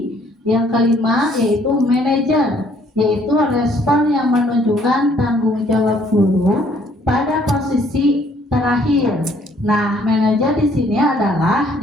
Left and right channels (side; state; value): both; normal; correlation 0.63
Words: Yang kelima yaitu manajer, yaitu respon yang menunjukkan tanggung jawab guru pada posisi terakhir. Nah, manajer di sini adalah